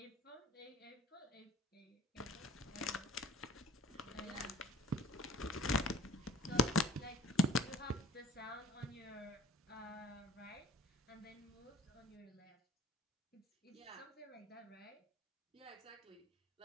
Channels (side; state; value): both; normal; correlation 0.49